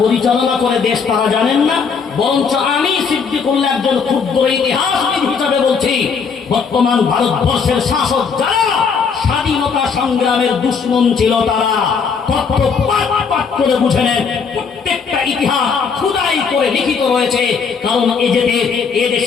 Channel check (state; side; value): quieter; right; 5.8 dB